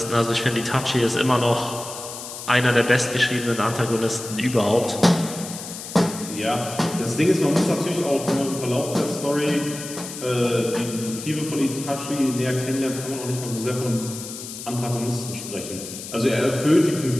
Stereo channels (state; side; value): noise; left; hiss, 10 dB below the sound